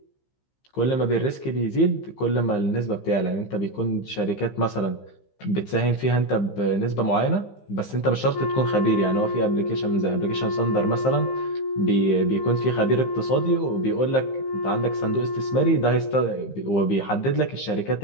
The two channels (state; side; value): late; right; 15 ms